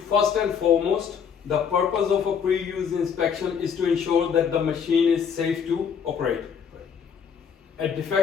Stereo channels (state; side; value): quieter; right; 7.0 dB